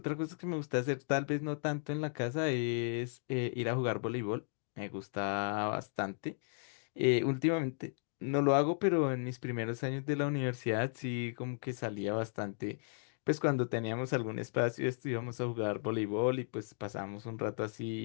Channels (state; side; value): silent; right; digital silence